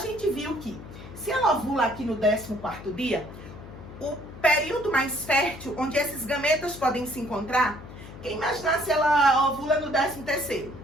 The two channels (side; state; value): left; noise; hum, 15 dB below the sound